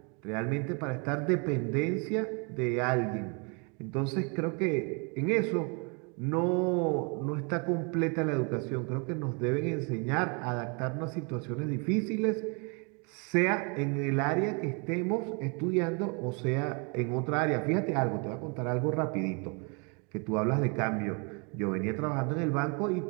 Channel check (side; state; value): left; quieter; 34.2 dB